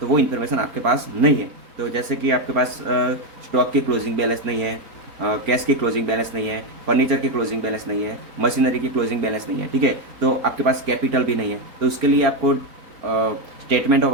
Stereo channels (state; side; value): late; left; 4.4 ms